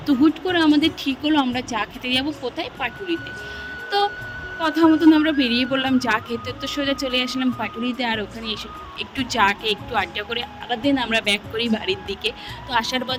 তো হুট করে আমাদের ঠিক হলো আমরা চা খেতে যাবো কোথায়, পাটুরিতে। তো কথা মতন আমরা বেরিয়ে পড়লাম চা খেতে। তো সোজা চলে আসলাম পাটুরিতে, আর ওখানে এসে একটু চা খেয়ে একটু আড্ডা করে আবার দিন আমরা ব্যাক করি বাড়ির দিকে। তো আসার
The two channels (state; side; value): identical; both; correlation 1.00